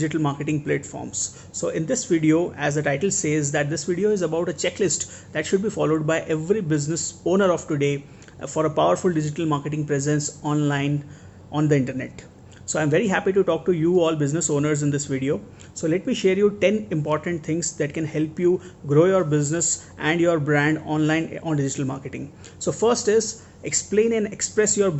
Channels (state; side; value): identical; both; correlation 1.00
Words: marketing platforms. So in this video, as the title says, that this video is about a checklist that should be followed by every business owner of today for a powerful digital marketing presence online on the internet. So I'm very happy to talk to you all business owners in this video. So let me share you 10 important things that can help you grow your business and your brand online on digital marketing. So first is explain and express your